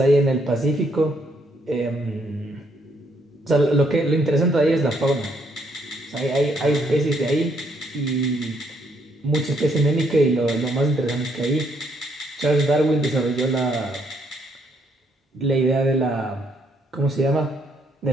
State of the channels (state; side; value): normal; both; correlation 0.71